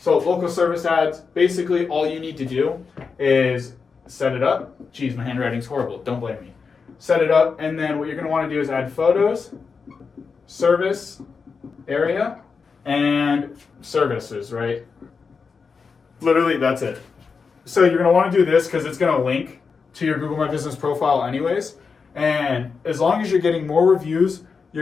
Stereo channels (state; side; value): quieter; right; 5.2 dB